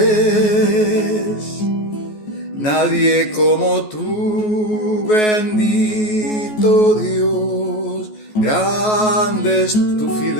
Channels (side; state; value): right; late; 14 ms